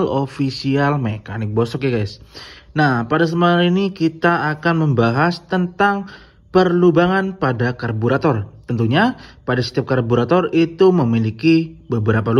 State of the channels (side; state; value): both; identical; correlation 1.00